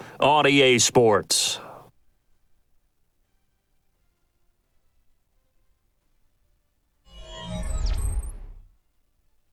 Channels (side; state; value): both; identical; correlation 1.00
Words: on EA Sports.